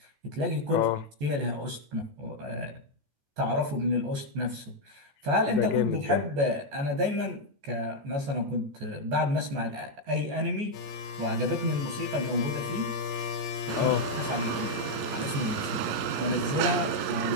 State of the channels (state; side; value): late; left; 14 ms